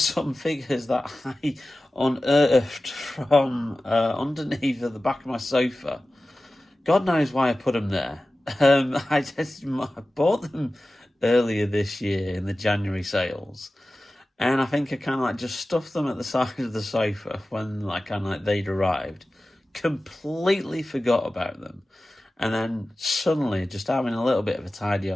figures that I unearthed from underneath the back of my sofa. God knows why I put them there. I bought them earlier this year in the January sales, and I think I kind of like just stuffed them at the side of the sofa when they'd arrived. Completely forgot about them. And then suddenly, just having a little bit of a tidy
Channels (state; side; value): normal; both; correlation 0.96